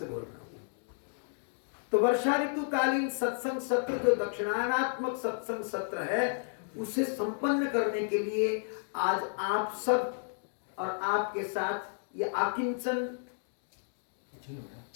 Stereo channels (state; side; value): silent; right; digital silence